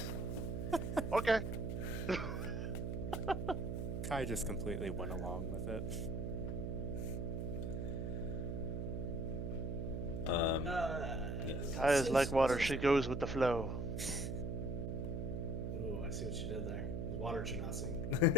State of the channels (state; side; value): noise; right; hum, 2 dB below the sound